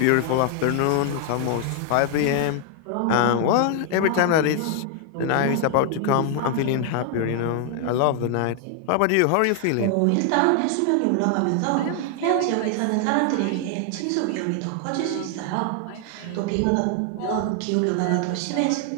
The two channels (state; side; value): different; both; correlation 0.00